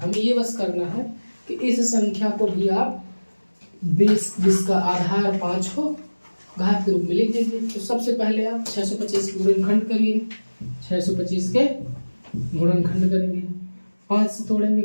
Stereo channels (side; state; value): both; inverted; correlation -1.00